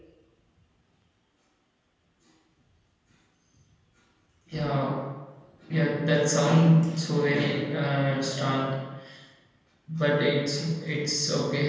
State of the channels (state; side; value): identical; both; correlation 1.00